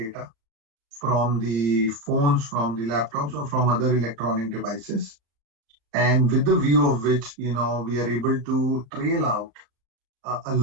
from the phones, from the laptops, or from other electronic devices. And with the view of which, we are able to trail out a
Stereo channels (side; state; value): left; late; 35 ms